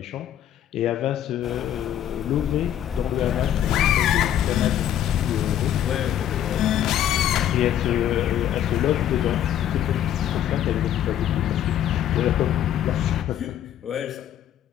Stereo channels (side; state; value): right; quieter; 10.9 dB